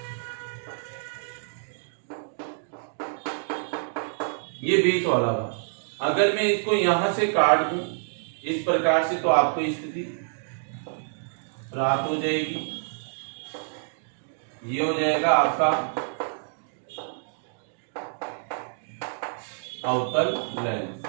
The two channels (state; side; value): silent; left; digital silence